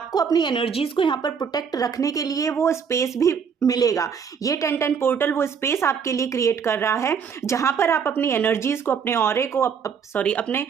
अपनी एनर्जीज को यहाँ पर प्रोटेक्ट रखने के लिए वो स्पेस भी मिलेगा। ये 10-10 पोर्टल वो स्पेस आपके लिए क्रिएट कर रहा है, जहाँ पर आप अपनी एनर्जीज को, अपने ऑरे को, अपने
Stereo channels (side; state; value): left; quieter; 6.7 dB